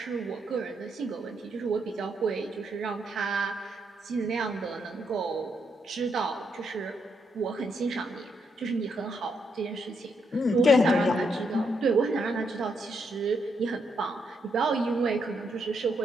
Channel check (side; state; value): both; normal; correlation 0.78